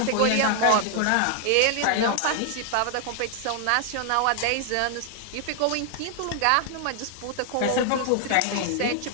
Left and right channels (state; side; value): different; both; correlation 0.00